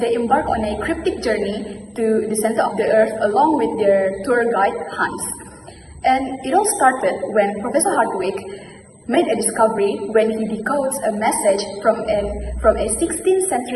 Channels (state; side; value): identical; both; correlation 1.00